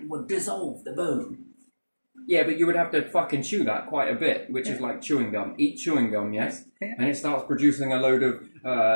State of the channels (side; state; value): both; inverted; correlation -1.00